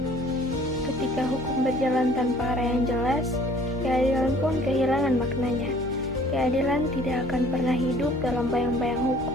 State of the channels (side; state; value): both; normal; correlation 0.54